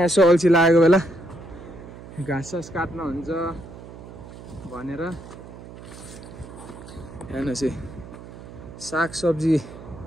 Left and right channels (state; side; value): noise; right; hum, 15 dB below the sound